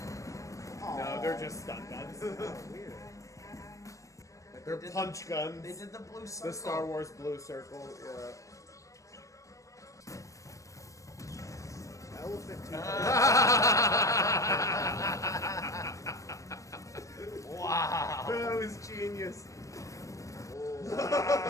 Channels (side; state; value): right; late; 0.16 ms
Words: No, they're just stun guns. Weird. They're punch guns. They did the blue circle. The Star Wars blue circle. Yeah. Elephant tooth. Wow. That was genius.